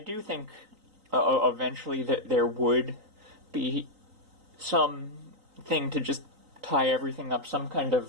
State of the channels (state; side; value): late; left; 3.9 ms